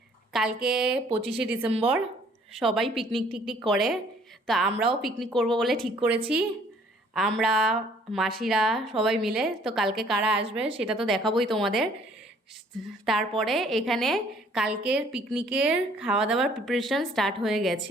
কালকে 25শে ডিসেম্বর, সবাই পিকনিক টিকনিক করে, তো আমরাও পিকনিক করব বলে ঠিক করেছি। আমরা মাসিরা সবাই মিলে। তো কালকে কারা আসবে সেটা তো দেখাবোই তোমাদের। তারপরে এখানে কালকের পিকনিকের খাওয়া দাওয়ার প্রিপারেশন স্টার্ট হয়ে গেছে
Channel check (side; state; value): both; normal; correlation 0.59